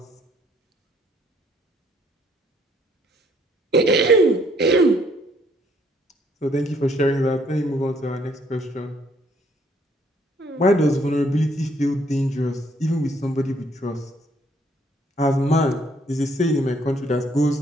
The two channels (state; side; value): normal; both; correlation 0.66